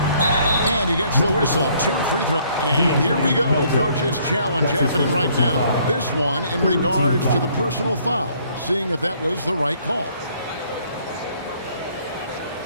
he gets the whistle. 2 free throws. And here we go. Coach's challenge happening right now. This one in regards to the personal foul. Seeing if that was the right call.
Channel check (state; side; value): inverted; both; correlation -0.63